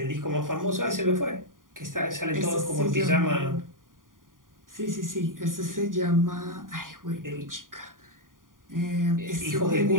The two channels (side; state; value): left; late; 0.90 ms